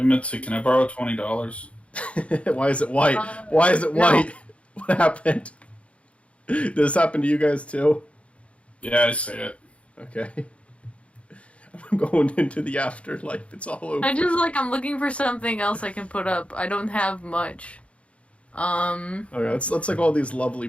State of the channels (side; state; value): right; late; 0.062 ms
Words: Mitzi, can I borrow $20? Why is it white? Why is it white? No. What happened? Did this happen to you guys too? Yeah, I see it. Okay. I'm going into the afterlife. It's all over. I'm looking for something else I can put up. I don't have much. Okay, let's all these lovely